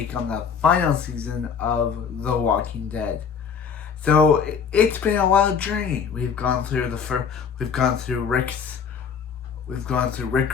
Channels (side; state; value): right; quieter; 6.6 dB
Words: on the final season of The Walking Dead. So it's been a wild journey. We've gone through Rick